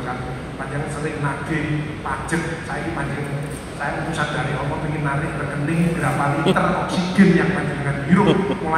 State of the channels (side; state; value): both; identical; correlation 1.00